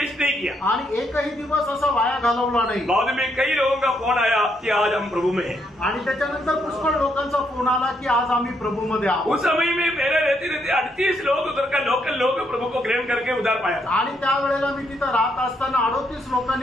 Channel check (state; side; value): normal; both; correlation 0.75